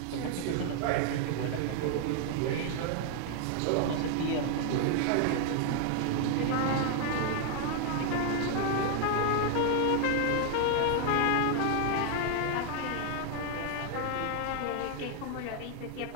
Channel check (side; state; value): both; different; correlation 0.00